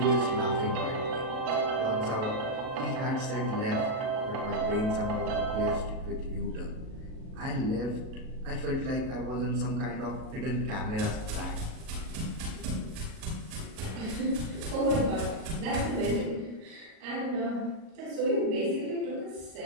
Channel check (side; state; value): left; late; 37 ms